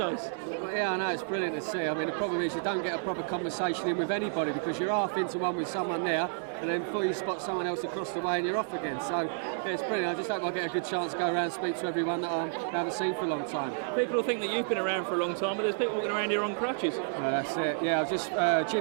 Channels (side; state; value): left; silent; digital silence